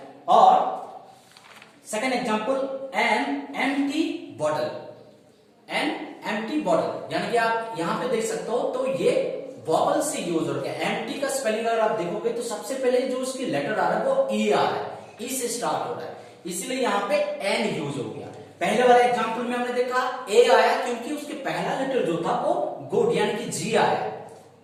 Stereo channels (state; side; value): identical; both; correlation 1.00